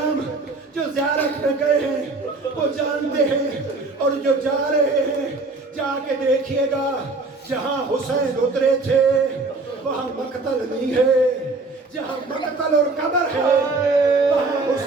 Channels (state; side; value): quieter; left; 3.5 dB